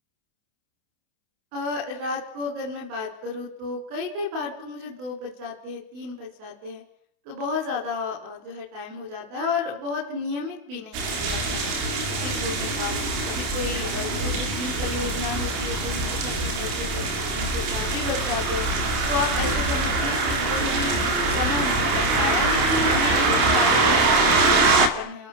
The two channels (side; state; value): left; late; 28 ms